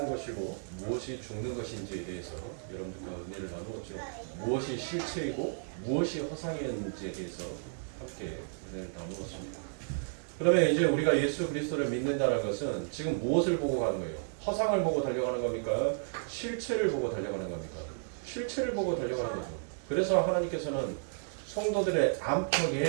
것이고 무엇이 죽는 것인지에 대해서 여러분들과 은혜를 나누었죠. 무엇이 실체이고 무엇이 허상이었는지에 대해서 함께 은혜를 나누었습니다. 그러면 이제 우리가 예수 그리스도를 믿는다는 것은 지금 무엇을 보고 가는 거예요? 허상을 보고 달려가는 겁니까? 실체를 보고 달려가는 겁니까? 실체를 보고 달려가는 거죠. 그래서 하나님께서는 성도들의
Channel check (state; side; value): silent; left; digital silence